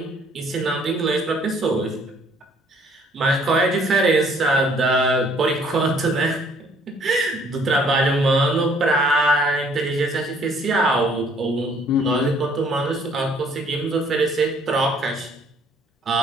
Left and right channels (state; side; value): normal; both; correlation 0.61